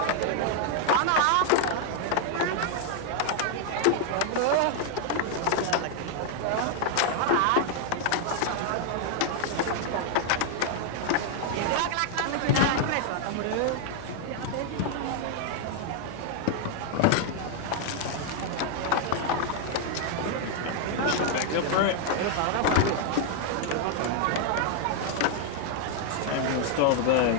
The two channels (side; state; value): both; different; correlation 0.00